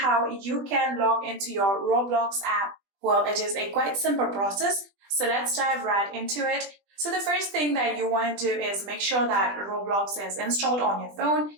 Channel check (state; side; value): late; left; 20 ms